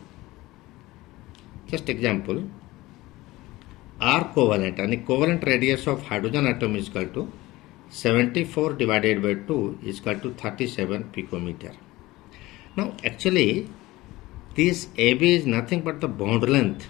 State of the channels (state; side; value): quieter; right; 19.0 dB